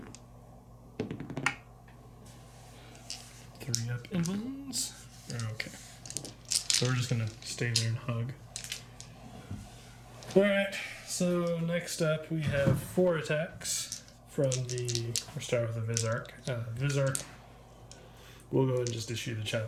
3 up invulns. Okay. So we're just gonna stay there and hug. Alright, so next up we have 4 attacks from the... We'll start with the Visarch. Visarch, we'll go ahead and just issue the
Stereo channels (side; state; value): both; identical; correlation 1.00